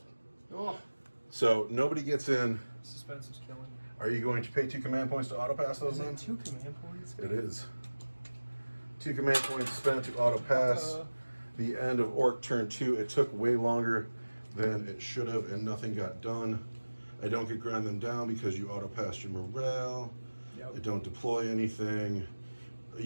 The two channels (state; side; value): inverted; both; correlation -1.00